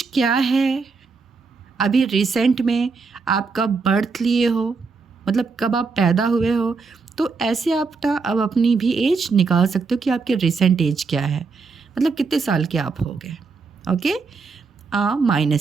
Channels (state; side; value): quieter; left; 4.6 dB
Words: क्या है, अभी रिसेंट में आप कब बर्थ लिए हो, मतलब कब आप पैदा हुए हो, तो ऐसे आप ना अब अपनी भी एज निकाल सकते हो कि आपके रिसेंट एज क्या है, मतलब कितने साल के आप हो गए। ओके,